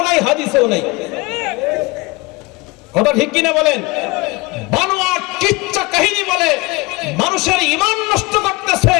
নাই, হাদিসেও নাই। কথা ঠিক কিনা বলেন? বানোয়াট কিচ্ছা কাহিনী বলে মানুষের ঈমান নষ্ট করতেছে,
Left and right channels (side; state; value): right; quieter; 24.1 dB